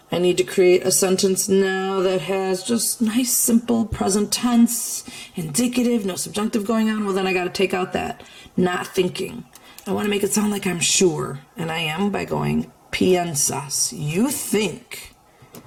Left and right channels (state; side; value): identical; both; correlation 1.00